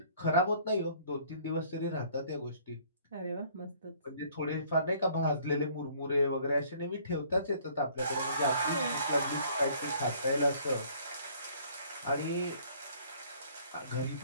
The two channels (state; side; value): inverted; both; correlation -0.57